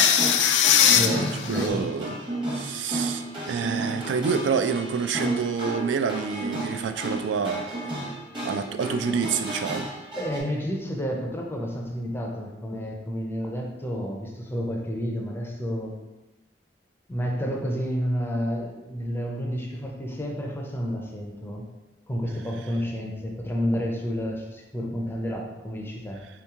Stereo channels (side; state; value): both; normal; correlation 0.38